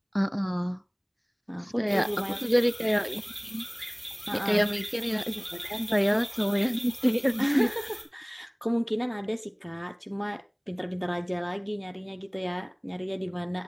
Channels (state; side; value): identical; both; correlation 1.00